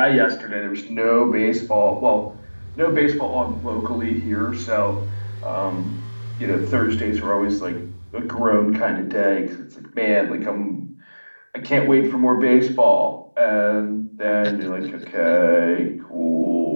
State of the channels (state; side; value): inverted; both; correlation -1.00